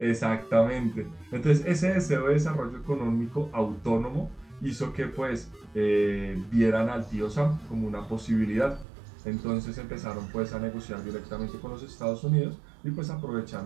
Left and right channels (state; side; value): drops out; left; at 8.8 s